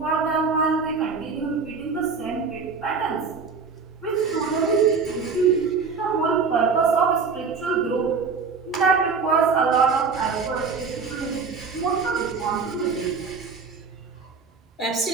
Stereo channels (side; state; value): left; quieter; 5.1 dB